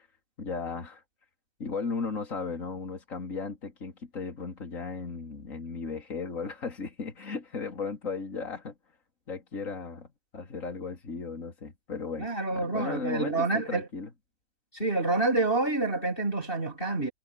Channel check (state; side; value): late; right; 2.7 ms